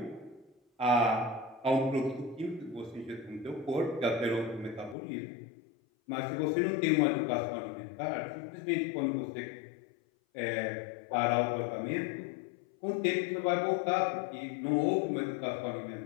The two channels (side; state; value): right; drops out; at 5.0 s